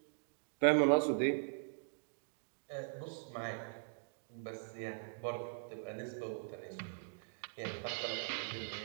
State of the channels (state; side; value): silent; left; digital silence